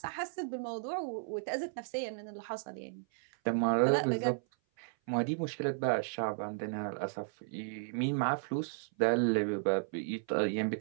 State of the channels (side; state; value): left; silent; 55 dB below the other